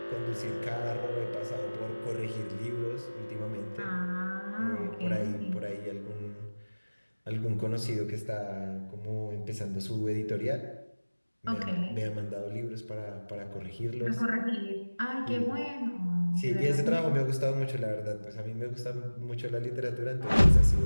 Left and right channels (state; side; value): inverted; both; correlation -1.00